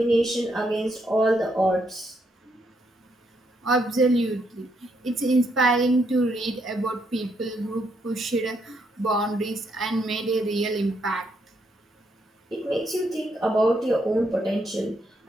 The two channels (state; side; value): normal; both; correlation 0.76